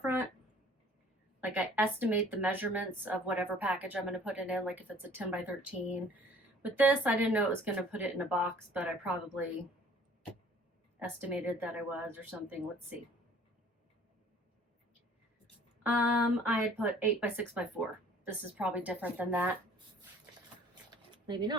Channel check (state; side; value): normal; both; correlation 0.53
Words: Like I estimate the measurements of whatever package I'm going to put it in, like if it's a 10 by 13. With this, I didn't know it was going to put it in a box, but I probably estimated that I was or something. Let's see. I had put 8 by 6 by 4. This is probably different than that. Maybe